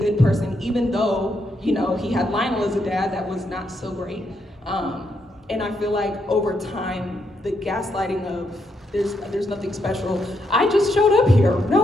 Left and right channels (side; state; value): both; normal; correlation 0.79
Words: person, even though, you know, he had Lionel as a dad that was not so great. And I feel like over time, the gaslighting of there's nothing special, I just showed up here,